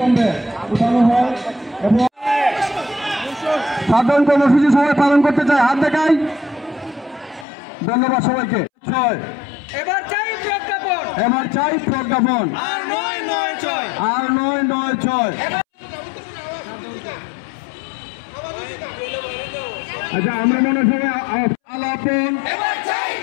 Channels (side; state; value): right; drops out; at 7.5 s